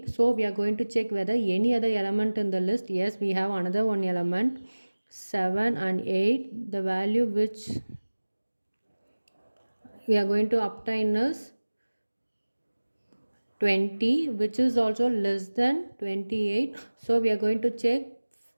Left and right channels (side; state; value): both; inverted; correlation -1.00